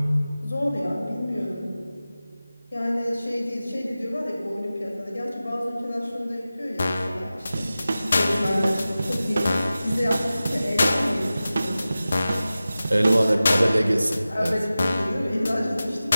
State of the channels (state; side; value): inverted; both; correlation -0.96